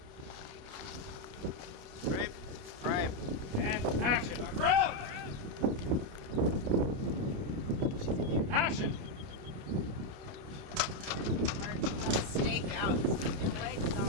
Frame. And action. Round. Action. Stake out. Your legs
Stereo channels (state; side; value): late; left; 29 ms